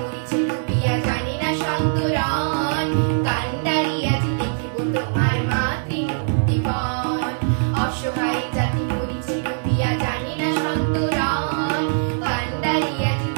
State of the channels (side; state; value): left; silent; 60 dB below the other